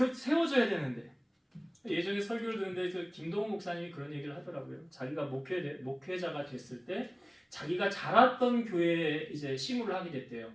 되는데. 예전에 설교를 듣는데 그 김동훈 목사님이 그런 얘기를 하더라고요. 자기가 목회자가 됐을 때 자기가 자랐던 교회에 이제 시무를 하게 됐대요.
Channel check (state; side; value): identical; both; correlation 1.00